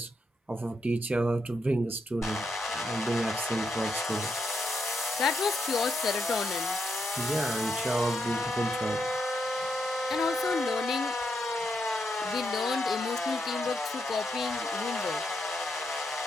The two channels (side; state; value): both; normal; correlation 0.81